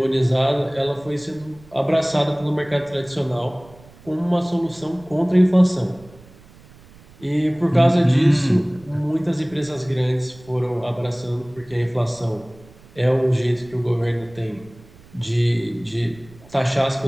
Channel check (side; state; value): right; noise; rumble, 24 dB below the sound